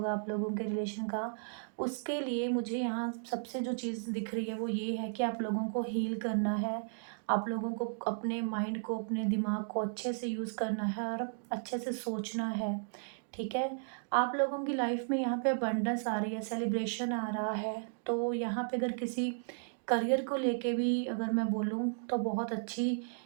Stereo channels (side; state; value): left; silent; digital silence